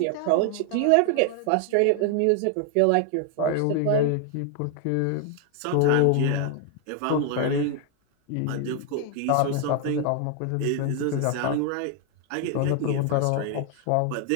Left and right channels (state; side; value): different; both; correlation 0.00